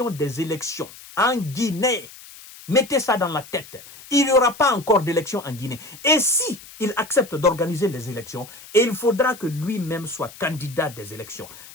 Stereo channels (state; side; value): noise; left; hiss, 18 dB below the sound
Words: des élections en Guinée. Mettez ça dans la tête. Il n'y aura pas encore d'élections en Guinée. Et si il accepte d'organiser les élections, il faudra que lui-même soit candidat des élections.